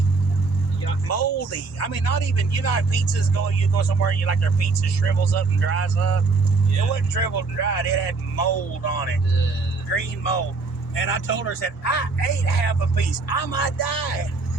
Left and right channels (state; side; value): quieter; left; 4.0 dB